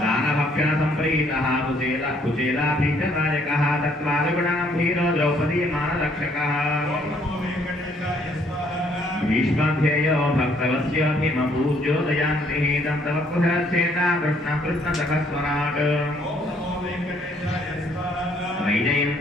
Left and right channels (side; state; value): both; normal; correlation 0.65